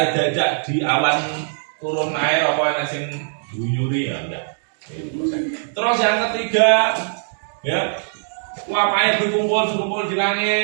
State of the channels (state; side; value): silent; left; digital silence